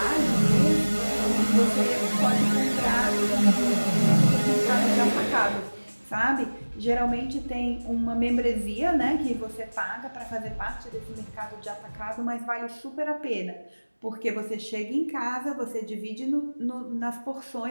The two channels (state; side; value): inverted; both; correlation -1.00